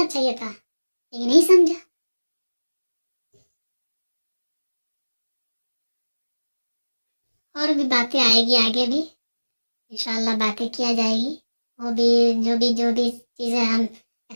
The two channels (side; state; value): both; inverted; correlation -1.00